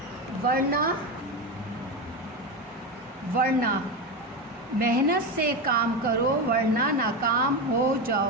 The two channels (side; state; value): both; normal; correlation 0.17